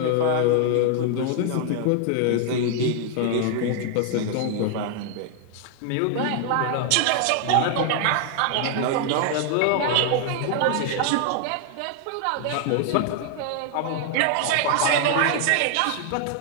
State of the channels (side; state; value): both; different; correlation 0.00